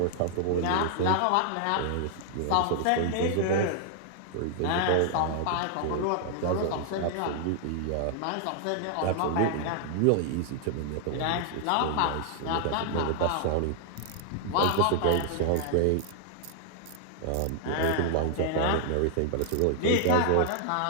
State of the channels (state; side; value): different; both; correlation 0.00